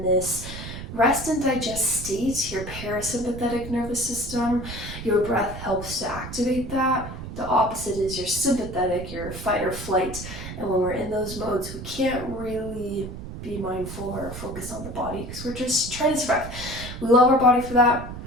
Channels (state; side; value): noise; right; rumble, 10 dB below the sound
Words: this rest and digest state, your parasympathetic nervous system. Your breath helps to activate that. The opposite is your sympathetic, your fight or flight. And when we're in those modes, we can't really be mindful or focus on the body because we're just trying to survive. We love our body for that,